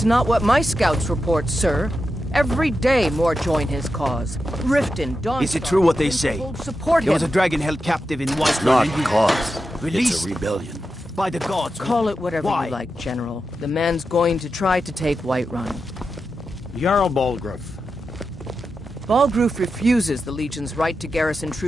not what my scouts report, sir. Every day more join his cause. Riften, Dawn. Is it true what they say? Support There him. was a dragon held captive in Whiterun. It's not a cause. Released It's a rebellion. by the gods. Call it whatever Why? you like, General. The man's going to try to take Whiterun. Jarl Balgruuf. Balgruuf refuses the Legion's right to garrison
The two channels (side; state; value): both; normal; correlation 0.89